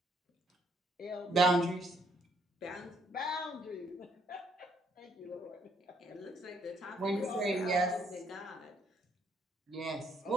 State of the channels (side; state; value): both; normal; correlation 0.69